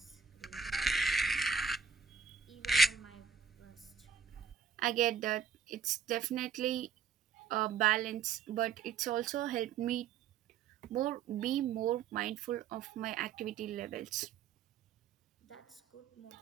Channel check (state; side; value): quieter; left; 6.5 dB